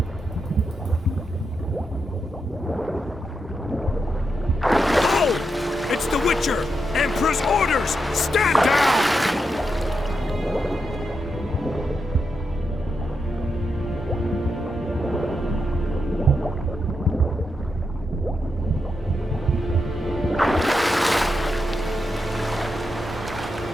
Oh! It's the Witcher! Emperor's orders! Stand down!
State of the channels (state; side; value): normal; both; correlation 0.85